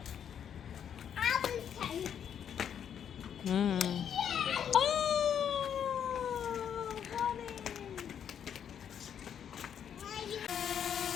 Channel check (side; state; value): right; quieter; 8.6 dB